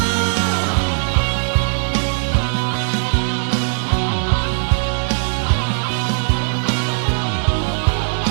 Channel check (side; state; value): left; silent; digital silence